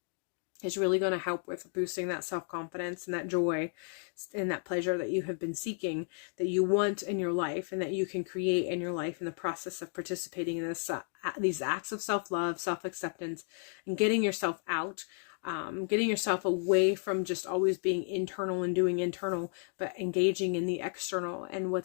is really going to help with boosting that self-confidence and that joy and that pleasure that you have been seeking, that you want in your life and that you can create in your life in the process of participating in these acts of self-love, self-acceptance, and getting yourself out, getting yourself away from just always being internal and doing internal, but engaging in the external and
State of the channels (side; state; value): right; silent; 56 dB below the other